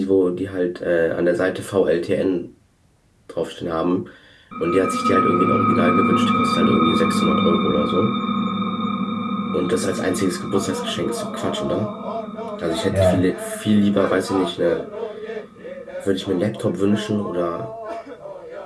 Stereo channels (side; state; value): both; identical; correlation 1.00